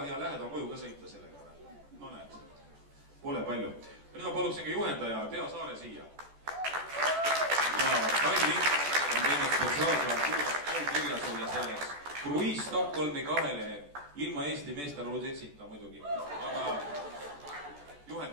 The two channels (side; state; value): left; late; 14 ms